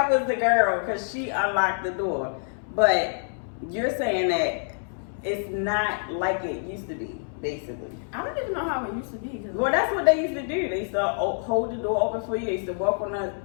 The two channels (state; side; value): silent; right; 61 dB below the other